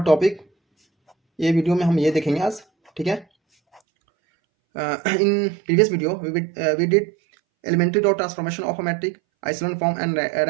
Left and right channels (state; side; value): drops out; left; at 3.8 s